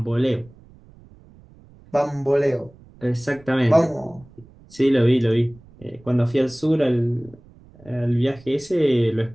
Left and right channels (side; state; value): right; noise; rumble, 25 dB below the sound